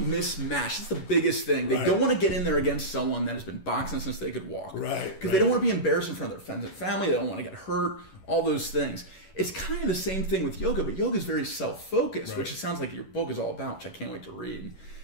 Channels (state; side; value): late; right; 11 ms